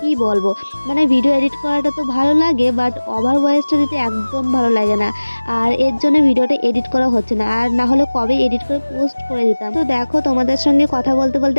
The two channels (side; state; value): both; inverted; correlation -1.00